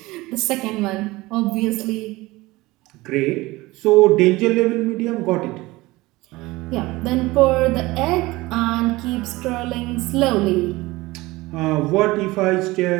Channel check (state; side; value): quieter; left; 20.3 dB